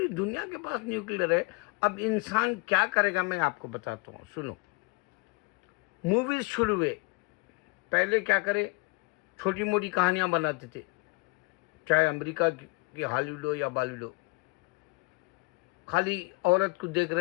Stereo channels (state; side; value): quieter; right; 27.4 dB